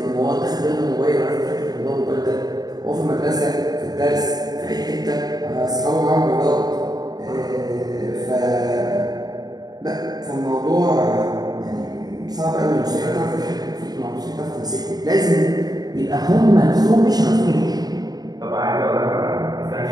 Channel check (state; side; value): late; left; 0.19 ms